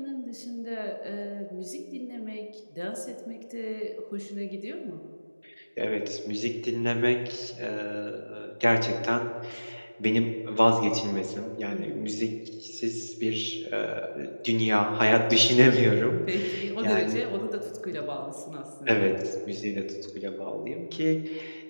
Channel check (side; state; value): both; inverted; correlation -1.00